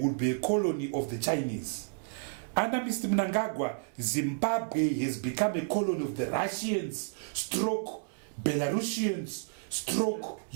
would be a colony of the Chinese. Under Mr. Mnangagwa, Zimbabwe has become a colony of the Russians, stroke Belarusians, stroke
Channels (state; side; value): silent; left; 57 dB below the other